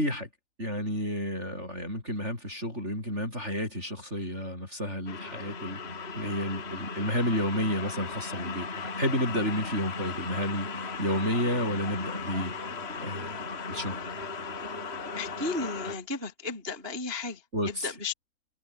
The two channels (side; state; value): left; late; 3.4 ms